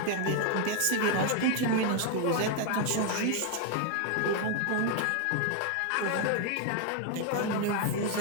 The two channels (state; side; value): different; both; correlation 0.01